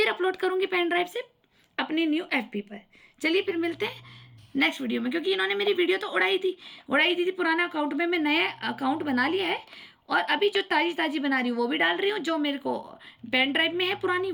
अपलोड करूंगी पेन ड्राइव से अपनी न्यू FB पर। चलिए फिर मिलते हैं नेक्स्ट वीडियो में, क्योंकि इन्होंने मेरी वीडियो तो उड़ाई दी थी पुराना अकाउंट में। मैं नया अकाउंट बना लिया है और अभी जो ताज़ी बना रही हूँ वो भी डाल रही हूँ, जो मेरे को पेन ड्राइव में है पुरानी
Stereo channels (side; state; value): both; identical; correlation 1.00